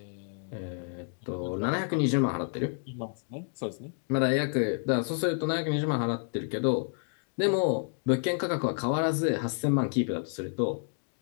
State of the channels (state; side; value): silent; right; 58 dB below the other